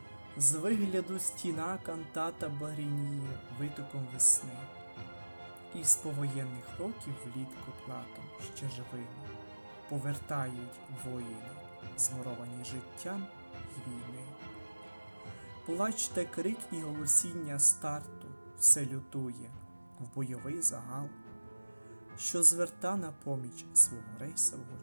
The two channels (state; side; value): inverted; both; correlation -1.00